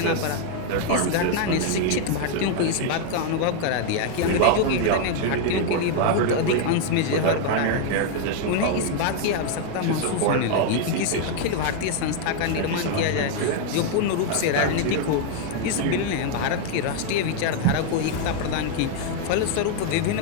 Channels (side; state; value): both; different; correlation 0.00